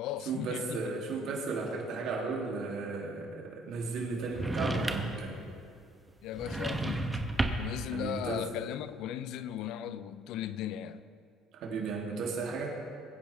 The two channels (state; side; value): normal; both; correlation 0.60